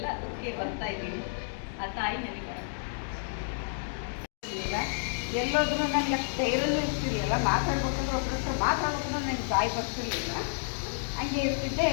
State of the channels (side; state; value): right; silent; digital silence